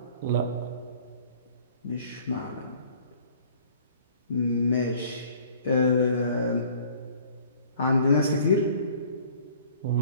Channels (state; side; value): inverted; both; correlation -0.53